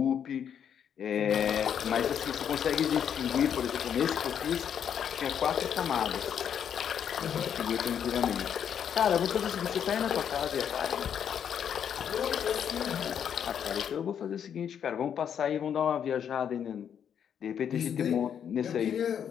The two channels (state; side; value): quieter; right; 8.5 dB